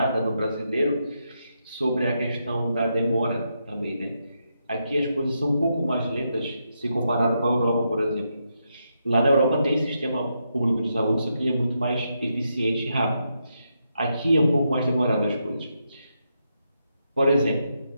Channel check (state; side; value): inverted; both; correlation -0.82